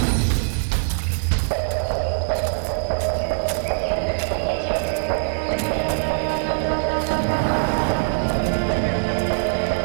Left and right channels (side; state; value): left; silent; 57 dB below the other